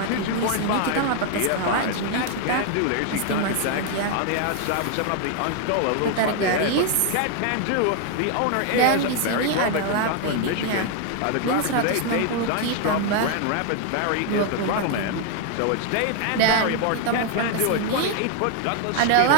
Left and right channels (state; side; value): different; both; correlation 0.00